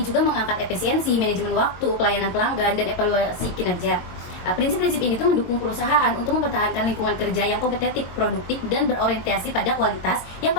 mengangkat efisiensi, manajemen waktu, pelayanan pelanggan, dan evaluasi kinerja. Prinsip-prinsip ini tuh mendukung perusahaan untuk mempertahankan lingkungan kerja yang kompetitif, produktif, dan berorientasi pada kualitas yang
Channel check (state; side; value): late; right; 22 ms